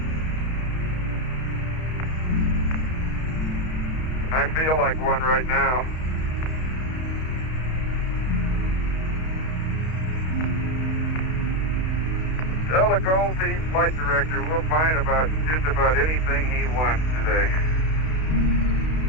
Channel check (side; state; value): right; late; 32 ms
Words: I feel like one right now. Tell the Gold Team flight director we'll find just about anything he wants today.